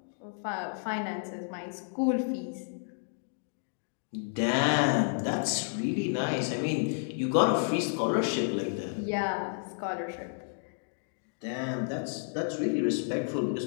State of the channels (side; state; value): right; silent; digital silence